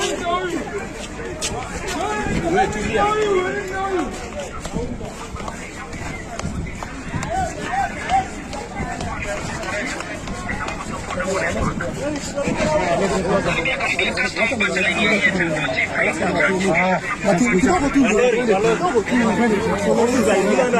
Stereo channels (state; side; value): identical; both; correlation 1.00